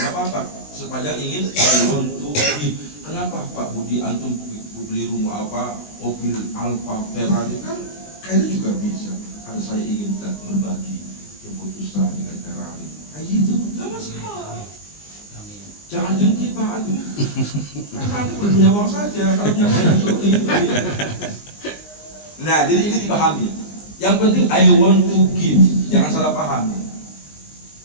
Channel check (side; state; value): right; late; 20 ms